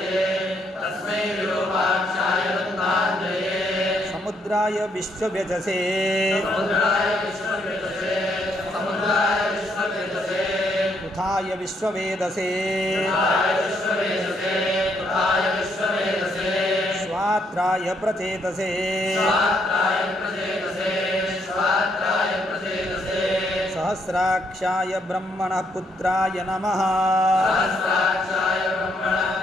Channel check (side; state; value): both; normal; correlation 0.73